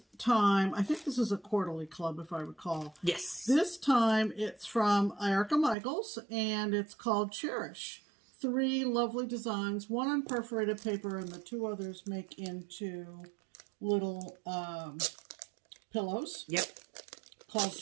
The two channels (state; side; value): drops out; left; at 5.8 s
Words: time, I think this is a quarterly club, if I recall. Yes. This time, it's from Erica Michaels, and it's called Cherish. 3 lovely designs, one on perforated paper and the 2 others make into little pillows. Yep. Called